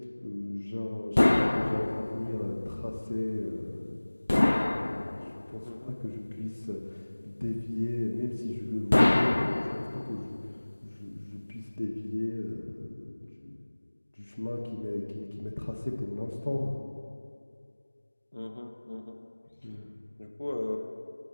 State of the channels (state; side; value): inverted; both; correlation -1.00